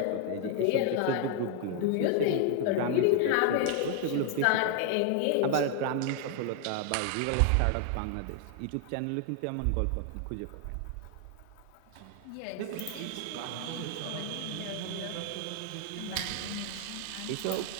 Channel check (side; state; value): both; different; correlation 0.00